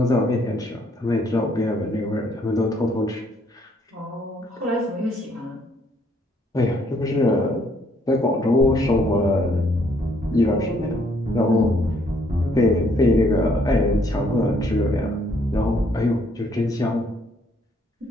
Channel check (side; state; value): both; normal; correlation 0.67